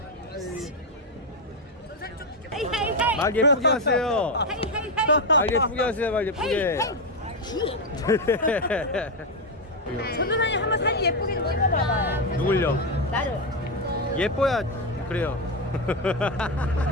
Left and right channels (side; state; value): both; normal; correlation 0.07